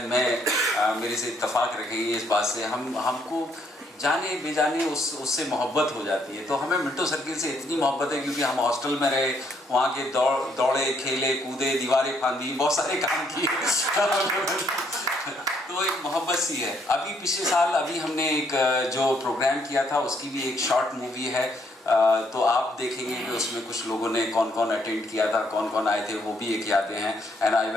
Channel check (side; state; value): both; normal; correlation 0.71